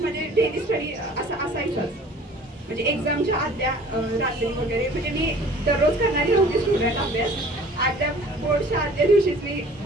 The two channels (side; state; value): both; normal; correlation 0.49